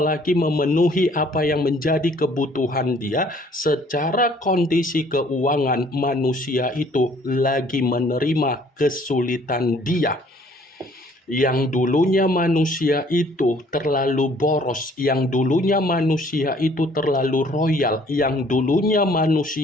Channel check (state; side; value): normal; both; correlation 0.58